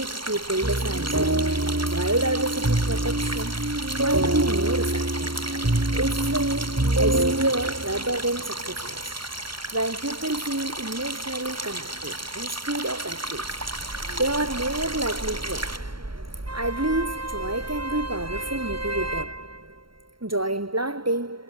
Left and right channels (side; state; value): left; late; 0.73 ms